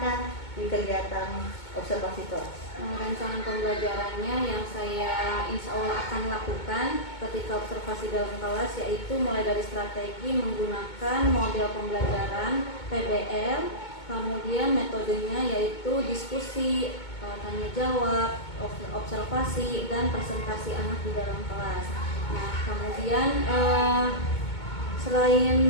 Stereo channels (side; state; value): right; late; 2.2 ms